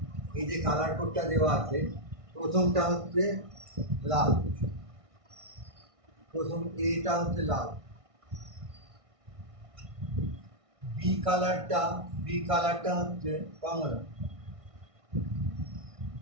এই যে কালার কোডটা দেওয়া আছে, প্রথমটা হচ্ছে লাল, এটা হচ্ছে লাল। বি কালারটা হচ্ছে কমলা,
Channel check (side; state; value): left; late; 1.6 ms